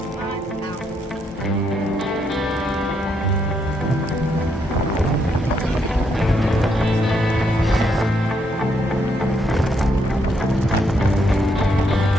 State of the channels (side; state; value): both; normal; correlation 0.76